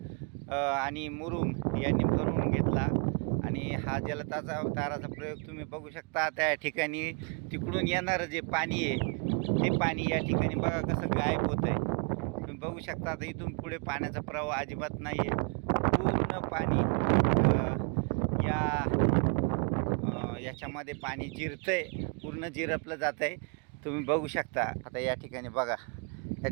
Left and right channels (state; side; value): quieter; left; 37.5 dB